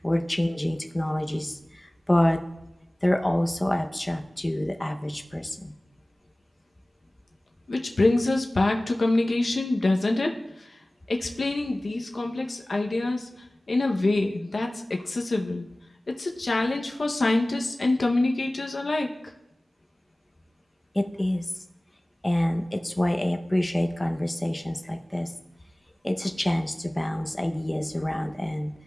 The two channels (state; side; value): normal; both; correlation 0.98